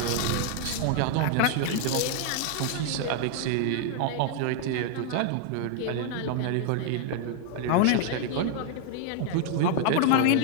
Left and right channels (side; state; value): both; different; correlation 0.00